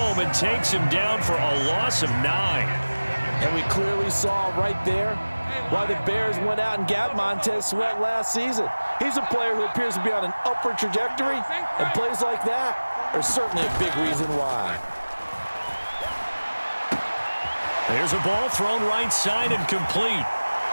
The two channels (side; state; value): both; inverted; correlation -1.00